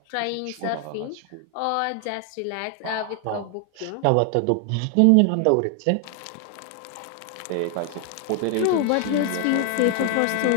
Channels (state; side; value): different; both; correlation 0.00